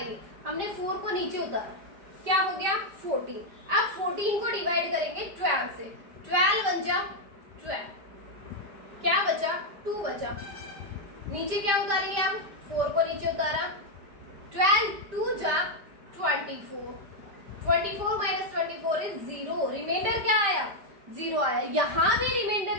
हमने 4 को नीचे उतारा, क्या हो गया, 14। अब 14 को डिवाइड करेंगे 12 से, 12 बन जा 12, क्या बचा, 2 बचा। नीचे क्या उतारेंगे, अब 4 को नीचे उतारा, 12 2 जा 24, 24 माइनस 24 इज 0। रिमाइंडर क्या आया, 0 आया। यहाँ भी रिमाइंडर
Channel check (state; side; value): late; left; 5.0 ms